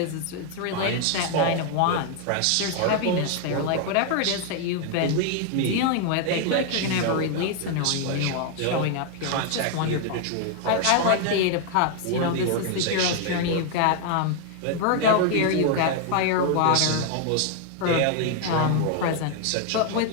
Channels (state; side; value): different; both; correlation 0.00